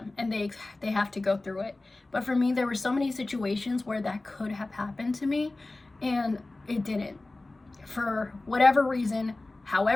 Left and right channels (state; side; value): quieter; right; 3.0 dB